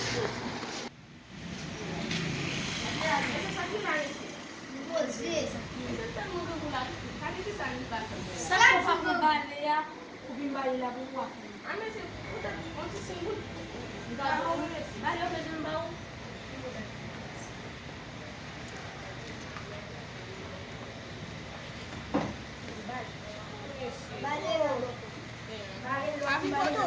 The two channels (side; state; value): both; identical; correlation 1.00